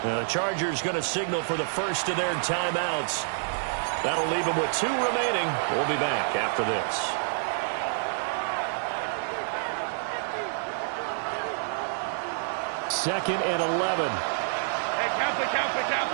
Chargers going to signal for the first of their timeouts. That'll leave them with 2 remaining. We'll be back after this. Second and 11. Hey, count it.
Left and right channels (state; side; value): silent; left; digital silence